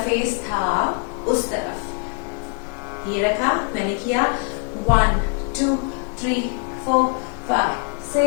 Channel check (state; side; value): quieter; right; 38.9 dB